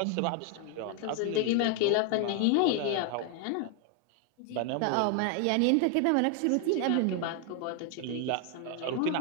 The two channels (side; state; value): both; different; correlation 0.01